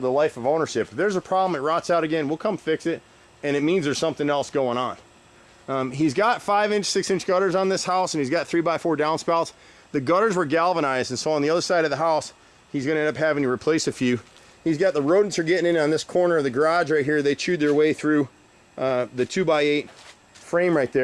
life of ownership. If there's a problem, it rots out again, we'll come fix it. And it means there's something else going on. He's got 5-inch, 6-inch gutters on this house, and he's got 3x4 downspouts. The gutters were galvanized, and so on the other side of the house, he's going to end up having to replace a few. He's got the rodents are getting in on this corner of the garage right here. They chewed their way through the 2x8 frame right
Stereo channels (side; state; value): both; identical; correlation 1.00